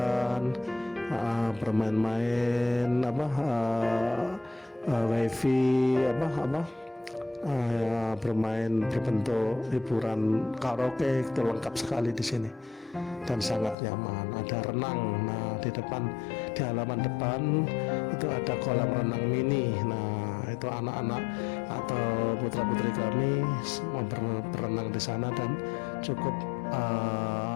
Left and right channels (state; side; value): drops out; right; at 13.8 s